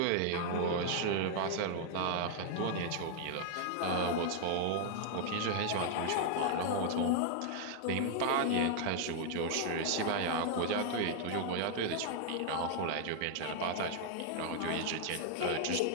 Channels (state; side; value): different; both; correlation 0.00